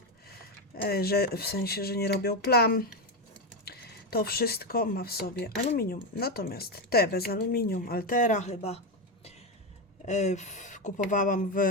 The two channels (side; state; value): both; normal; correlation 0.11